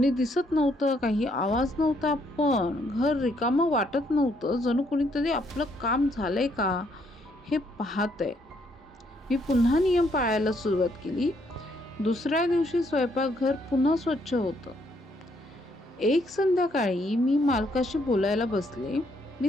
दिसत नव्हतं, काही आवाज नव्हता, पण घर रिकामं वाटत नव्हतं. जणू कोणीतरी आपलं काम झालंय का हे पाहतंय. मी पुन्हा नियम पाळायला सुरुवात केली. दुसऱ्या दिवशी स्वयंपाकघर पुन्हा स्वच्छ होतं. एक संध्याकाळी मी मालकाशी बोलायला बसले.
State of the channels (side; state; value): both; normal; correlation 0.71